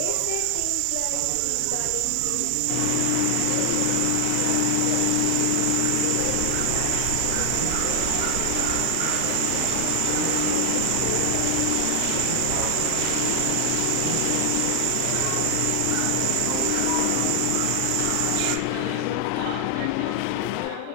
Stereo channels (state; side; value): different; both; correlation 0.00